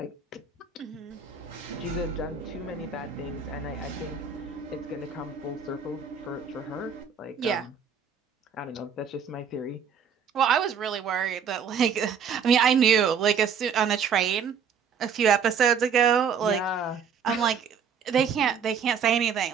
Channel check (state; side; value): quieter; left; 6.7 dB